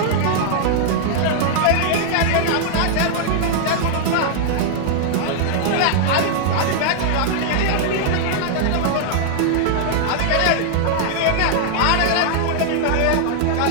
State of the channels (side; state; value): both; different; correlation -0.01